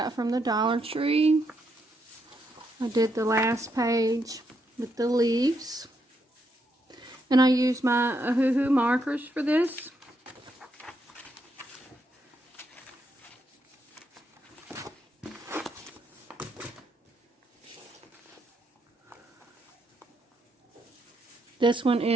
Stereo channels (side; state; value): both; normal; correlation 0.78